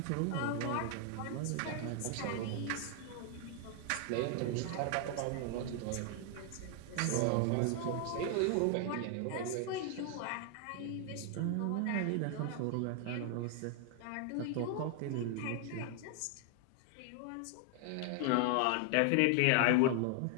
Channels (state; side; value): different; both; correlation 0.00